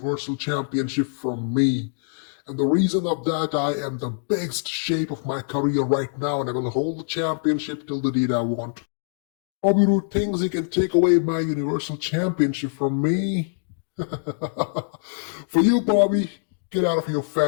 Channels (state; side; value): silent; right; digital silence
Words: Championship from me. And the reason of that, I am the best shape of my career right now, and I will hold the championship till the day I want. Bobby Roode thinks he can take away my Universal Championship from me. For you, Bobby, get out of your